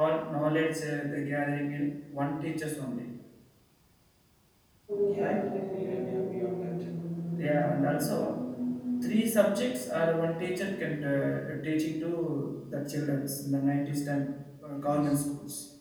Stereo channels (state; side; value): identical; both; correlation 1.00